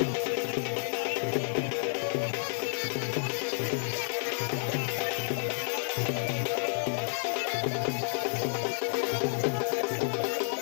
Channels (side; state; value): right; silent; digital silence